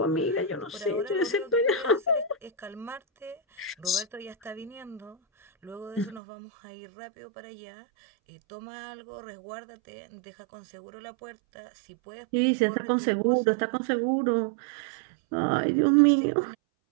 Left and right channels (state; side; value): drops out; left; at 6.2 s